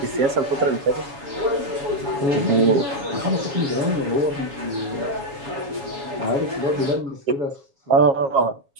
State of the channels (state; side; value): late; left; 7.1 ms